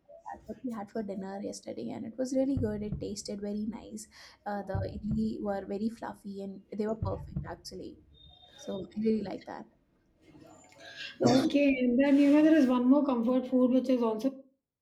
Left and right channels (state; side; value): identical; both; correlation 1.00